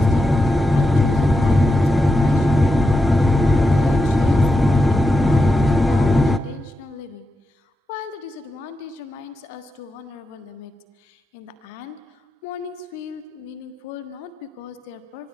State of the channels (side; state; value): both; normal; correlation 0.88